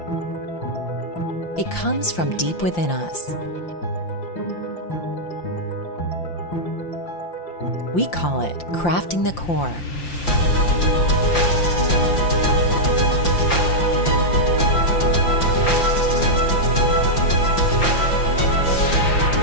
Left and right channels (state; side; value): late; right; 5.8 ms